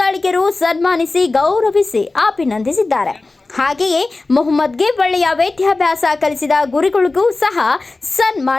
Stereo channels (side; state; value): right; quieter; 3.4 dB